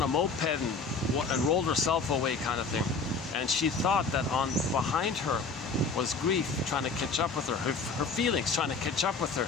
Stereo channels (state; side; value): quieter; right; 4.3 dB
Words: a moped and rolled herself away, kind of thing. And she thought that behind her was grief trying to catch up with her, her feelings trying to catch up with her.